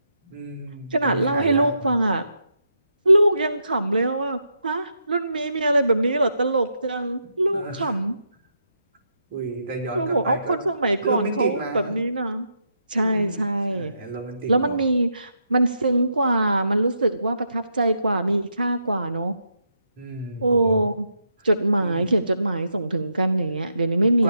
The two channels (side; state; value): both; inverted; correlation -0.81